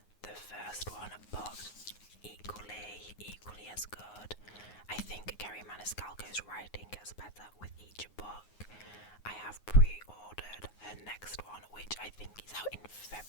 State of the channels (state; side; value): late; right; 9.5 ms